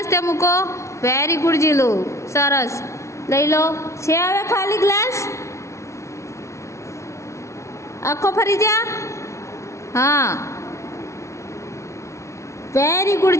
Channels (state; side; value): late; right; 0.14 ms